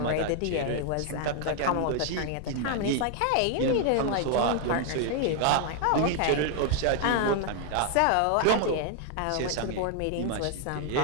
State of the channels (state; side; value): different; both; correlation 0.00